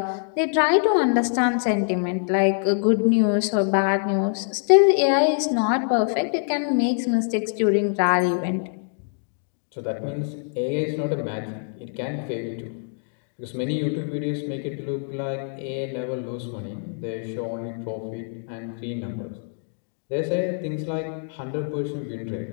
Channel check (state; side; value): silent; right; 58 dB below the other